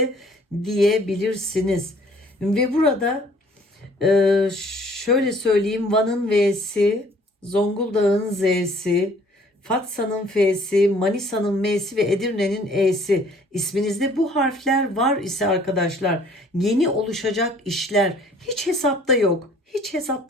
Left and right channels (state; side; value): normal; both; correlation 0.56